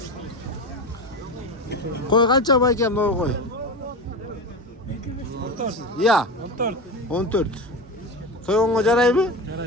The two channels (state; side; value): normal; both; correlation 0.23